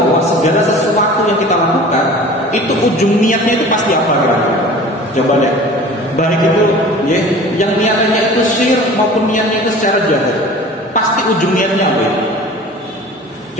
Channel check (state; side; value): normal; both; correlation 0.42